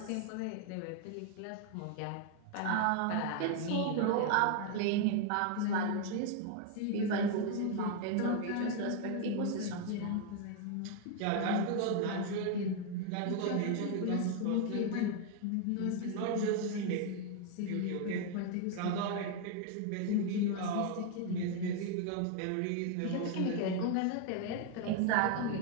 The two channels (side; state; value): both; different; correlation 0.00